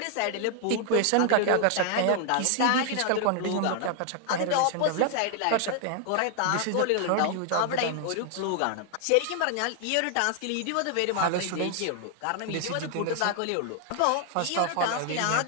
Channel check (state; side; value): different; both; correlation 0.00